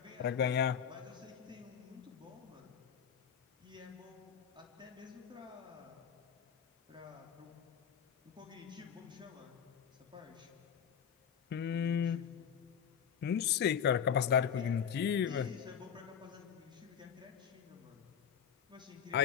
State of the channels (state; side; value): quieter; right; 8.0 dB